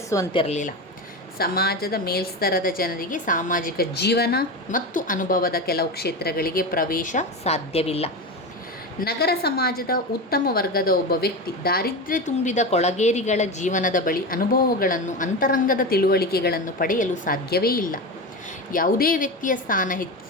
ಸಮಾಜದ ಮೇಲ್ಸ್ತರದ ಜನರಿಗೆ ಸಾಮಾಜಿಕ ಜೀವನ ಮತ್ತು ಅನುಭವದ ಕೆಲವು ಕ್ಷೇತ್ರಗಳಿಗೆ ಪ್ರವೇಶ ಸಾಧ್ಯವಿಲ್ಲ. ನಗರ ಸಮಾಜದ ಉತ್ತಮ ವರ್ಗದ ಒಬ್ಬ ವ್ಯಕ್ತಿ ದಾರಿದ್ರ್ಯ ತುಂಬಿದ ಕೊಳಗೇರಿಗಳ ಜೀವನದ ಬಳಿ ಅನುಭವಗಳನ್ನು, ಅಂತರಂಗದ ತಿಳುವಳಿಕೆಗಳನ್ನು ಪಡೆಯಲು ಸಾಧ್ಯವೇ ಇಲ್ಲ. ಯಾವುದೇ ವ್ಯಕ್ತಿಯ ಸ್ಥಾನ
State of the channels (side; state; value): both; normal; correlation 0.21